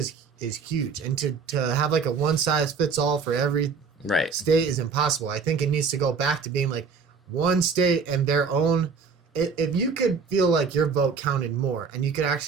huge, and to have like a one size fits all for every state is impossible. I think it needs to go back to being like one state and their own. If you could feel like your vote counted more and you could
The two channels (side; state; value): left; quieter; 5.4 dB